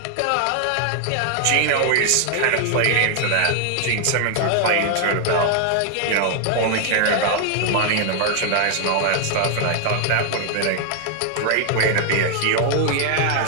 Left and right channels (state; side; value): different; both; correlation 0.00